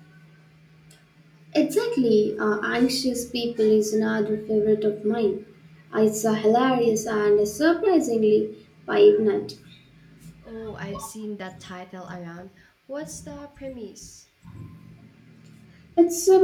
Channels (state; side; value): identical; both; correlation 1.00